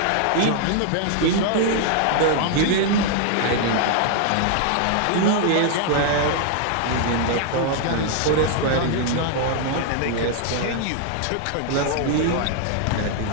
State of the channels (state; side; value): different; both; correlation 0.00